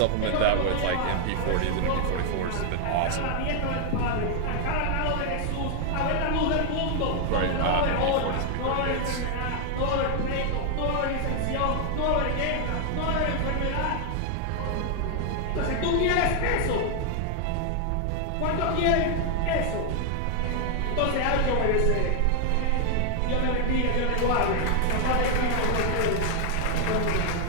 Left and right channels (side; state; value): both; different; correlation 0.00